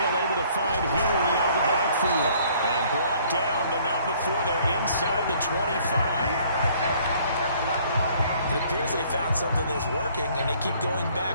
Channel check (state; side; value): inverted; both; correlation -0.59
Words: able to find Henry out of the backfield. And brought down, but not before they're inside the 25. It appears they found something that's working, and they keep going